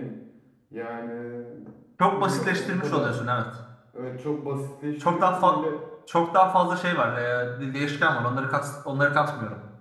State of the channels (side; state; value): both; identical; correlation 1.00